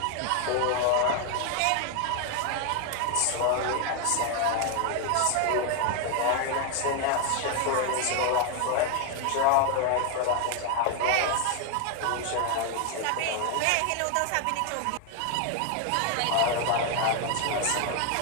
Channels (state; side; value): different; both; correlation 0.01